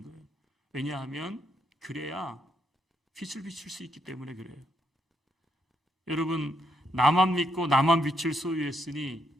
거예요. 왜냐하면 그래야 빛을 비출 수 있기 때문에 그래요. 여러분 나만 믿고 나만 빛을 소유했으니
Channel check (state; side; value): normal; both; correlation 0.78